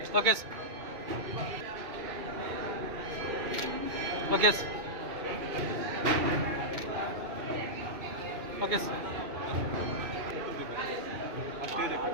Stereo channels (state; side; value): late; left; 2.2 ms